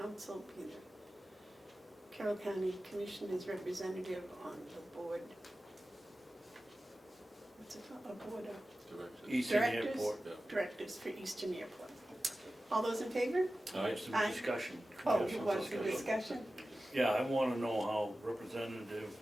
be the Carroll County Commissioners representative on the board. What's it called? A board of Eastern Directors? Airport. Yeah. Directors for Eastern Airport. All those in favor? All right. Some Aye. discussion. Oh, Have you some want some discussion? Yeah, I want to know how Representative,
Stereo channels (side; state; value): both; normal; correlation 0.95